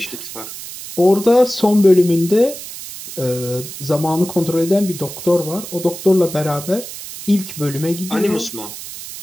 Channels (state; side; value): noise; right; hiss, 11 dB below the sound